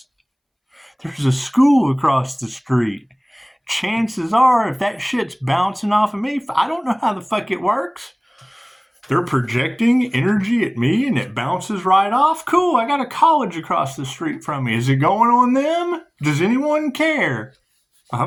There's a school across the street. Chances are, if that shit's bouncing off of me, I don't know how the fuck it works. They're projecting energy at me and it bounces right off. Cool, I got a college across the street from me. Is it going on them? Does anyone care?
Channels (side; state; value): both; identical; correlation 1.00